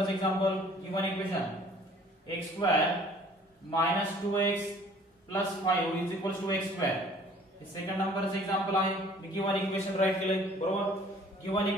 example given equation x² minus 2x plus 5 is equals to x². हे second नंबरचं example आहे. मी given equation right केलंय. बरोबर. गिवन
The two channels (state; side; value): normal; both; correlation 0.54